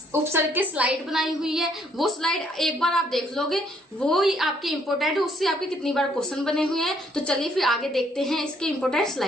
उपसर्ग के स्लाइड बनाई हुई है, वो स्लाइड एक बार आप देख लोगे, वो ही आपकी इंपोर्टेंट है। उससे आपके कितनी बार क्वेश्चन बने हुए हैं। तो चलिए फिर आगे देखते हैं इसके इंपोर्टेंट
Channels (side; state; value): both; normal; correlation 0.67